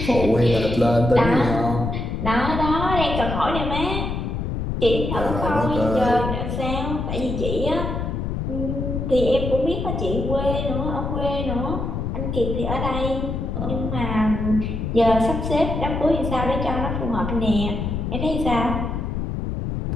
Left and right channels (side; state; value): left; noise; rumble, 3 dB below the sound